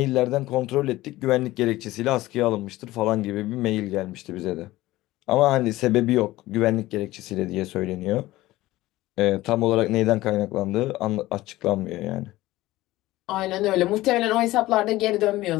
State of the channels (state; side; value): quieter; right; 17.4 dB